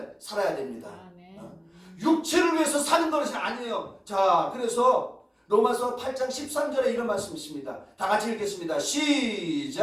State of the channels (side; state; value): both; identical; correlation 1.00